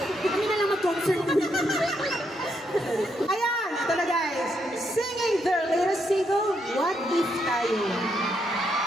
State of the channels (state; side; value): normal; both; correlation 0.78